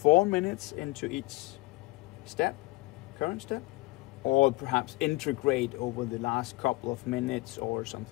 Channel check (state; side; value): quieter; right; 22.1 dB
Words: minutes into each step, current step, or perhaps integrate over the last couple of minutes or